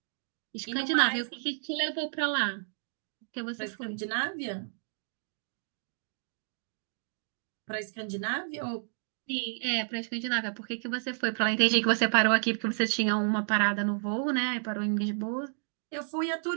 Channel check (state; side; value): silent; left; digital silence